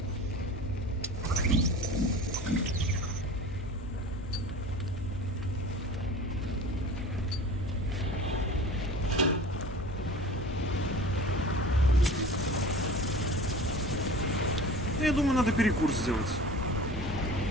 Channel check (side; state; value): both; normal; correlation 0.39